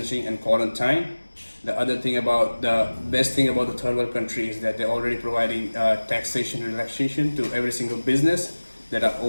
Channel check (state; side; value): inverted; both; correlation -1.00